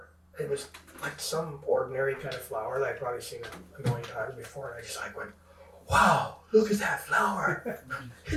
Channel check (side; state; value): both; identical; correlation 1.00